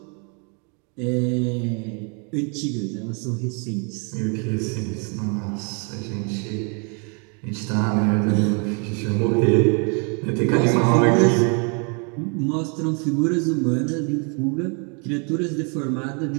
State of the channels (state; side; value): quieter; left; 36.8 dB